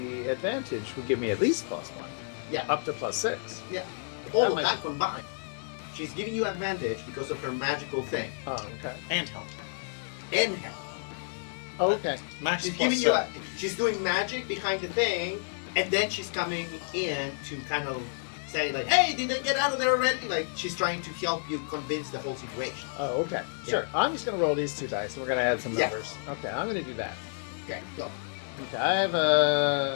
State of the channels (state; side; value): silent; right; digital silence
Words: advantage would give me at least +1. Yeah. Up to +6. All That of might- that combined. She's giving you advantage because of her magical thing Oh, okay. And help. and help. Oh, okay. Max She's plus giving you. seven. She's doing magic behind the thing, and then she's coming in to kind of say like, "Hey, did they get out of there already?" Like she's trying to help you convince the whole situation. Oh, okay. Sure. I'm just going to roll these 2 dice, and we're going to add some Yeah. numbers. Okay, I'm going to do that. Okay, go. Okay, I have